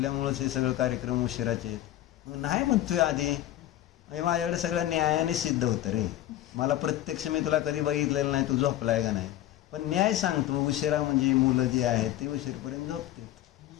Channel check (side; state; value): right; quieter; 13.6 dB